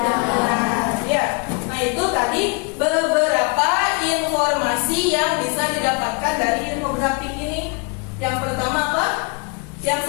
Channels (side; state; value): right; quieter; 33.6 dB